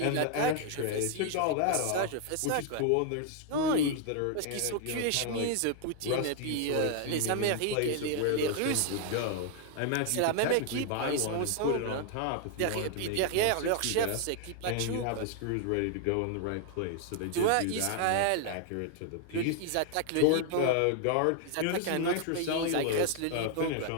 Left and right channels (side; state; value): both; different; correlation 0.00